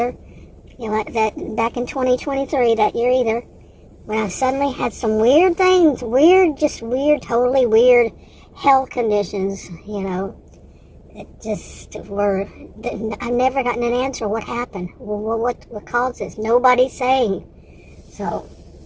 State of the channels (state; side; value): identical; both; correlation 1.00